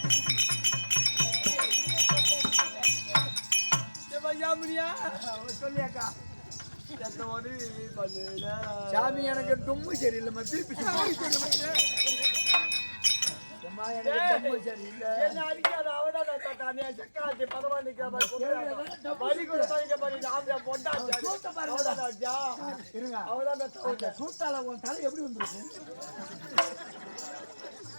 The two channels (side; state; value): both; inverted; correlation -1.00